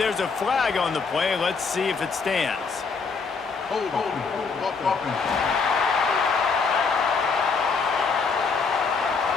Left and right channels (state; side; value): quieter; right; 4.9 dB